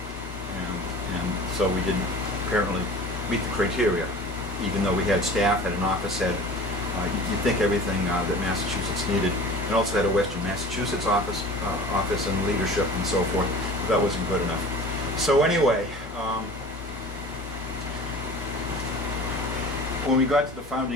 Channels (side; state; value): both; normal; correlation 0.40